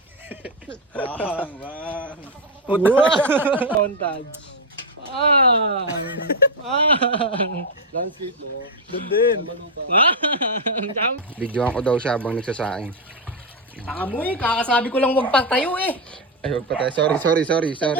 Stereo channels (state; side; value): normal; both; correlation 0.05